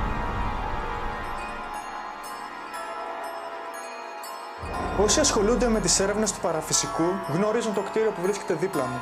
Όσοι ασχολούνται με τις έρευνες του παραφυσικού γνωρίζουν το κτίριο που βρίσκεται δίπλα μου.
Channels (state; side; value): identical; both; correlation 1.00